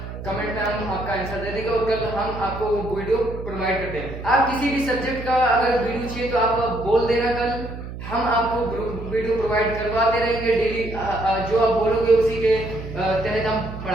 कमेंट में हम आपका आंसर दे देंगे और कल हम आपको वीडियो प्रोवाइड करते हैं। आप किसी भी सब्जेक्ट का अगर वीडियो चाहिए तो आप बोल देना, कल हम आपको वीडियो प्रोवाइड करवाते रहेंगे। डेली जो आप बोलोगे उसी के तहत हम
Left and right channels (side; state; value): right; noise; hum, 10 dB below the sound